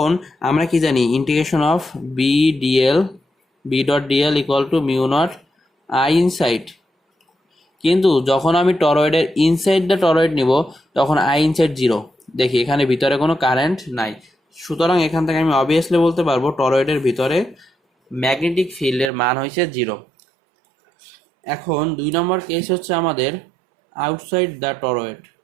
আমরা কি জানি, integration of B dot dl equal to mu naught I inside, কিন্তু যখন আমি টরয়েডের ইনসাইড দ্য টরয়েড নিব তখন আই ইনসাইড 0, দেখি এখানে ভিতরে কোনো কারেন্ট নাই, সুতরাং এখান থেকে আমি অবভিয়াসলি বলতে পারবো টরয়েডের ভিতরে ম্যাগনেটিক ফিল্ডের মান হয়েছে 0। এখন 2 নম্বর কেস হচ্ছে আমাদের আউটসাইড দ্য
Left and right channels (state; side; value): drops out; left; at 19.1 s